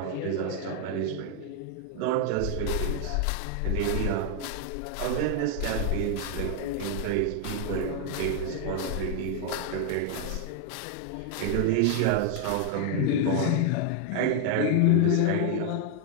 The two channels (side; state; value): both; different; correlation 0.00